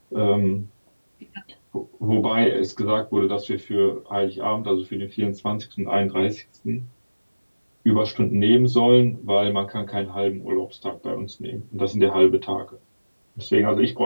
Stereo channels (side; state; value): both; inverted; correlation -1.00